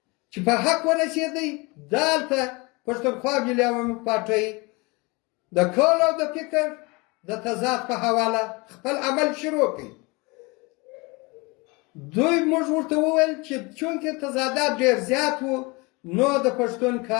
چې په حق ورسېدی دلته پښتونخوا ملي عوامي پارټۍ د کول او د فکر د تضاد په حواله خپل عمل شروع کړي. دوی موږ ورته وویل چې چونکې تضادات ډېر زیات وو نو د پښتون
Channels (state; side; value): quieter; right; 26.7 dB